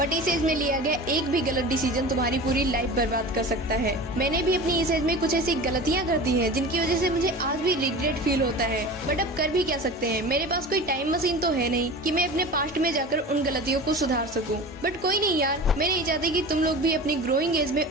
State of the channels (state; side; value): normal; both; correlation 0.34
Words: इस एज में लिया गया एक भी गलत डिसीजन तुम्हारी पूरी लाइफ बर्बाद कर सकता है। मैंने भी अपनी इस एज में कुछ ऐसी गलतियां कर दी हैं जिनकी वजह से मुझे आज भी रिग्रेट फील होता है, बट अब कर भी क्या सकते हैं। मेरे पास कोई टाइम मशीन तो है नहीं कि मैं अपने पास्ट में जाकर उन गलतियों को सुधार सकूं। बट कोई नहीं यार, मैं नहीं चाहती कि तुम लोग भी अपनी ग्रोइंग एज में